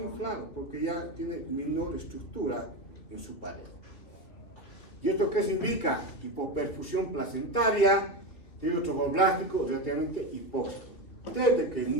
inflado, porque ya tiene menor estructura en su pared. ¿Y esto qué significa? Hipoperfusión placentaria, tromboblástico relativamente hipóxico, desde que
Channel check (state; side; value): late; right; 2.8 ms